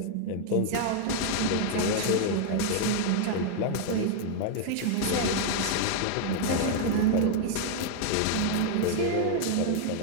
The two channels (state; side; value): different; both; correlation 0.00